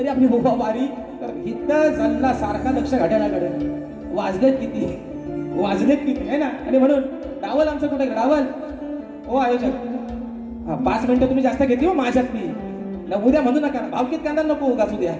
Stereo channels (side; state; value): both; identical; correlation 1.00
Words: आपली बुबा बारी तर इथं चालला सारखा लक्ष घड्याळाकडे. वाजलेत किती आहे ना. आणि म्हणून डावल आमचं कुठे डावल ओ आयोजक 5 मिनिटं तुम्ही जास्त घेतली हो माझ्यात मी उद्या म्हणू नका भावकीत कांदा नको गाजू द्या